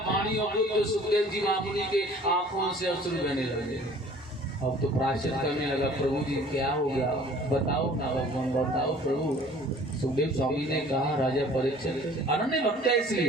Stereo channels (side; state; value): both; normal; correlation 0.51